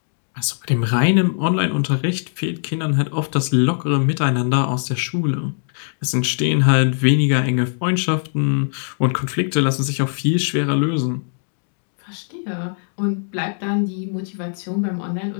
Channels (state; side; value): silent; right; 65 dB below the other